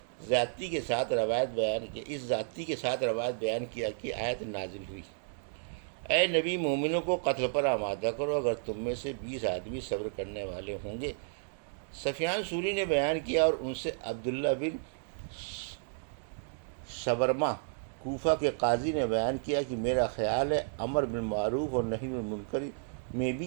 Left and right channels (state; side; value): silent; left; digital silence